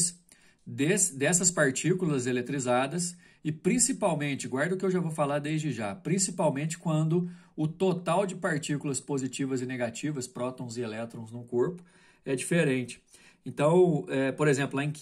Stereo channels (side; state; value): both; identical; correlation 1.00